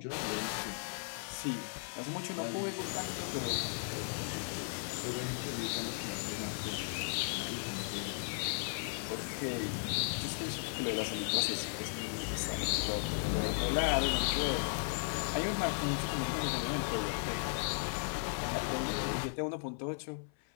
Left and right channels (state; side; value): silent; right; 54 dB below the other